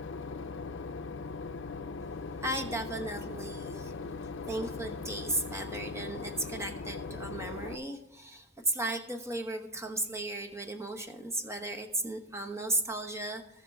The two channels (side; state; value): both; normal; correlation 0.15